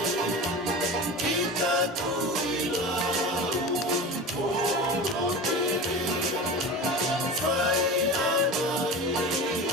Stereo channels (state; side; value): normal; both; correlation 0.31